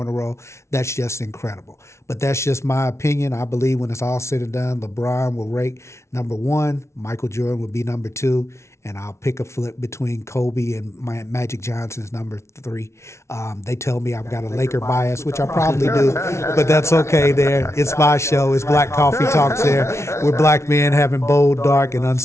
in a row. That's just incredible. But that's just my opinion. I believe when it's all said and done, LeBron will rate number 1, Michael Jordan will be number 2, and I'll pick a flip between Kobe and Magic Johnson's number 3. They tell me I've got a Laker bias, which I probably do, but that's okay there. It's my show. It's Black Coffee Talks there. We're black men having bold, dark, and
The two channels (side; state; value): right; late; 0.13 ms